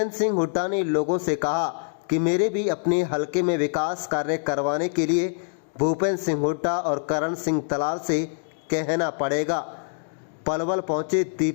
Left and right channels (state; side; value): silent; right; digital silence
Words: सिंह हुड्डा ने लोगों से कहा कि मेरे भी अपने हलके में विकास कार्य करवाने के लिए भूपेंद्र सिंह हुड्डा और करण सिंह तलाल से कहना पड़ेगा। पलवल पहुंचे